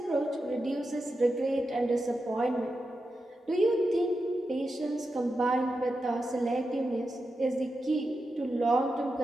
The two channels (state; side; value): normal; both; correlation 0.89